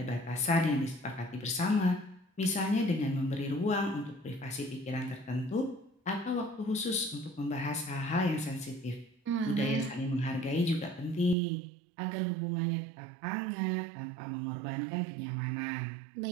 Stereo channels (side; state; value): left; drops out; at 11.4 s